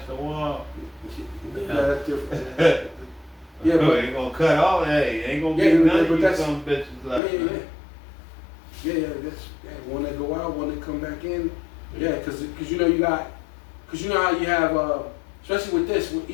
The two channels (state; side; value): drops out; right; at 7.2 s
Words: the wall. Yeah, that's different. Yeah, Oh, but ain't gonna cut all that. Ain't gonna Yeah, be none but of you that's- some bitches left. yeah. That's one that go out, one that come back in. Yeah, because you know you got, because you know how you have, especially with this, with